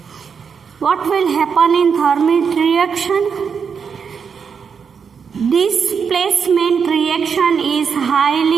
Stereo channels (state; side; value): quieter; left; 6.3 dB